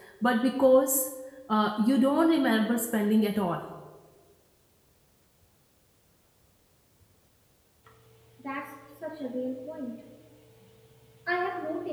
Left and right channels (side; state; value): both; identical; correlation 1.00